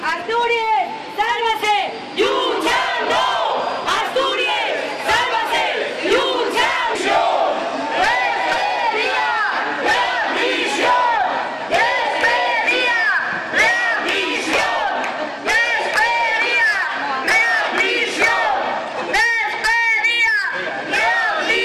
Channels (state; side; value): identical; both; correlation 1.00